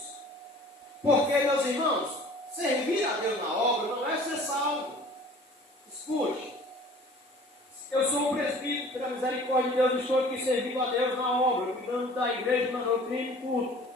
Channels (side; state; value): both; normal; correlation 0.48